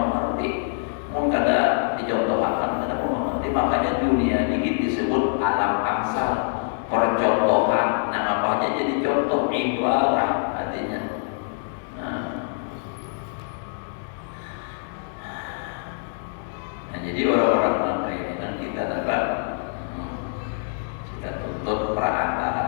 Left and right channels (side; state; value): right; silent; digital silence